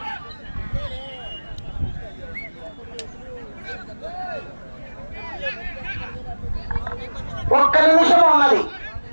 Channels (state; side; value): inverted; both; correlation -1.00